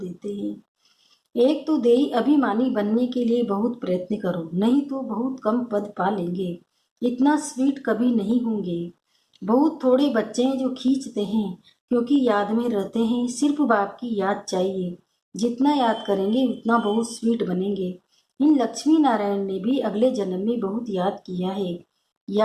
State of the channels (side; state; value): both; identical; correlation 1.00